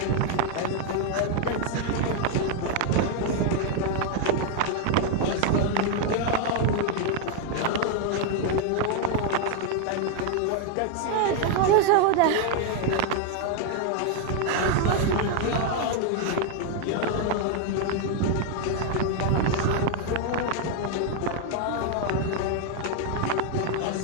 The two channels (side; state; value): both; different; correlation 0.01